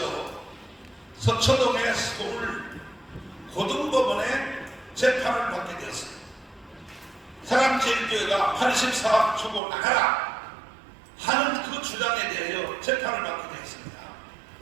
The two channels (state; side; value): drops out; left; at 9.6 s